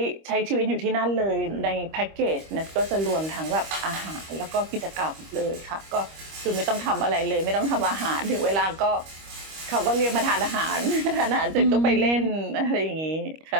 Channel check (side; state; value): left; late; 25 ms